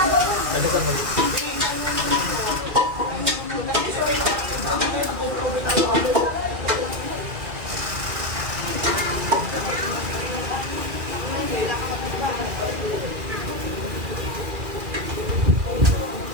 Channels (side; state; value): left; late; 2.4 ms